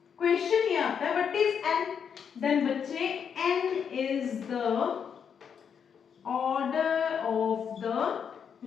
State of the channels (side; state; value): right; quieter; 7.3 dB